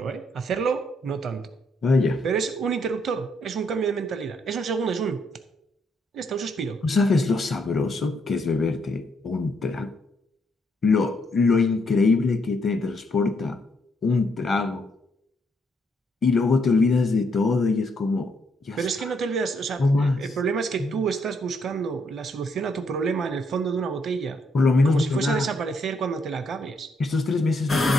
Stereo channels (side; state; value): both; normal; correlation 0.74